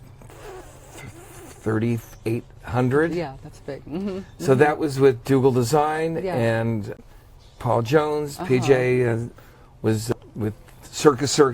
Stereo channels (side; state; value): both; identical; correlation 1.00